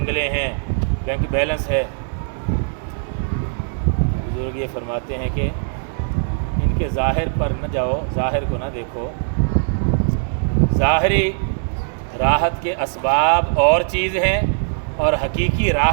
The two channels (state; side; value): silent; left; digital silence